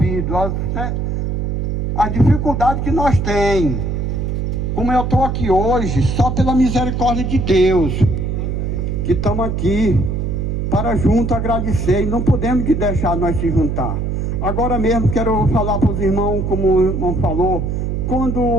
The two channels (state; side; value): noise; right; hum, 1 dB below the sound